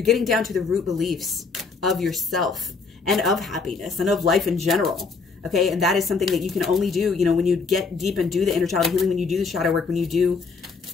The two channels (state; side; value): quieter; right; 4.6 dB